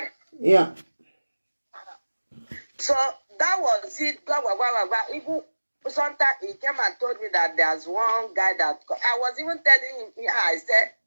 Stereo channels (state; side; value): inverted; both; correlation -1.00